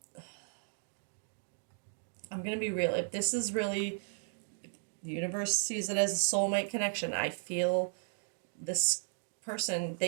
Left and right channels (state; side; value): silent; left; digital silence